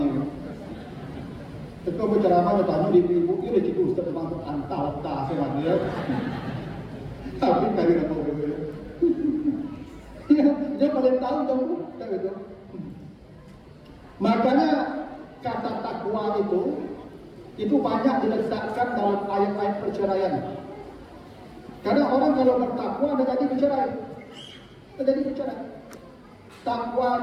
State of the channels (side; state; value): both; identical; correlation 1.00